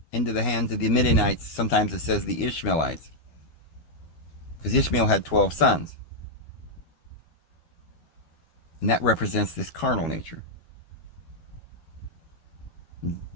into the hands of the Midianites. Sometimes it says the Ishmaelites, because Ishmael had 12 sons. And that represents this carnal nature.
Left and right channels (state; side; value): late; right; 12 ms